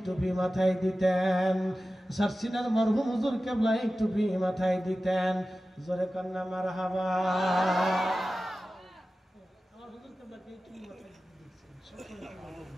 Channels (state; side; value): normal; both; correlation 0.95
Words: টুপি মাথায় দিতেন, সারসিনার মরহুম হুজুর কেবলা এই টুপি মাথায় দিতেন। জোরে কান্না মারহাবা। আমার হুজুর কেবলা এই টুপি মাথায় দিতেন।